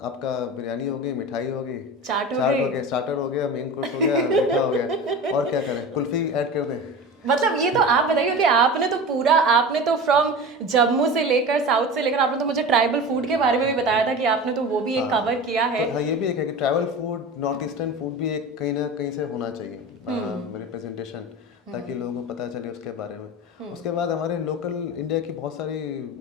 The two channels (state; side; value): normal; both; correlation 0.31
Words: आपका बिरयानी हो गई, मिठाई हो गई, चाट हो गई, स्टार्टर हो गया, मेन कोर्स हो गया, मीठा हो गया, और क्या करें, कुल्फी ऐड कर दें। मतलब ये तो आप बताइए कि आपने तो फ्रॉम जम्मू से लेकर साउथ से लेकर आपने तो मुझे ट्राइबल फूड के बारे में भी बताया था कि आपने तो वो भी एक कवर किया है। हाँ, ये भी एक है कि tribal food, north eastern food भी एक कहीं ना कहीं से होना चाहिए। रिप्रेजेंटेशन, ताकि लोगों को पता चले उसके बारे में। उसके बाद हमारे लोकल इंडिया की बहुत सारी